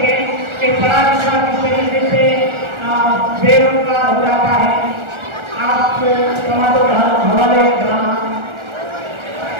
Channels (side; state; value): left; late; 1.4 ms